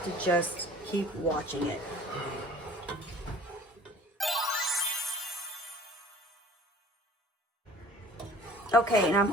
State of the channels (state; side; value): normal; both; correlation 0.48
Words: to just keep watching it. Okay, and I'm